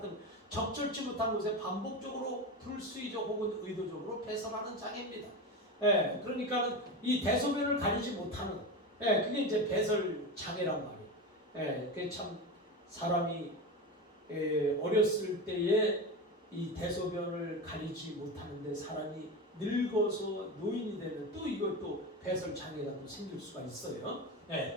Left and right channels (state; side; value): normal; both; correlation 0.22